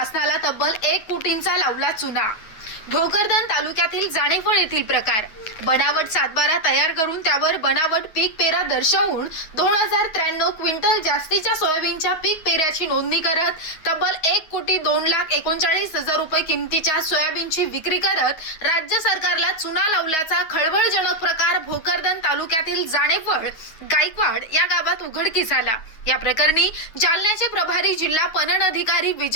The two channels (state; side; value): late; right; 9.4 ms